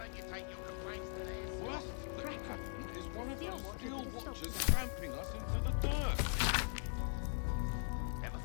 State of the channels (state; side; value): silent; right; 51 dB below the other